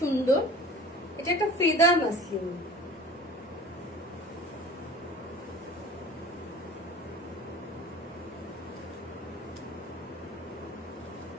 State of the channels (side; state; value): both; normal; correlation 0.42